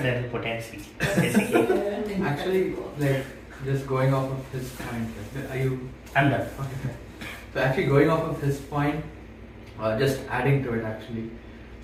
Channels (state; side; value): identical; both; correlation 1.00